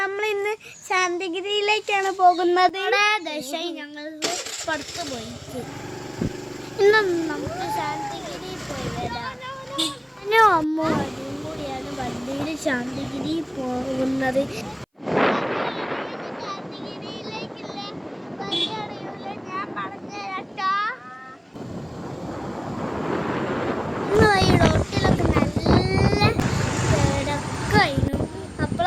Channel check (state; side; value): identical; both; correlation 1.00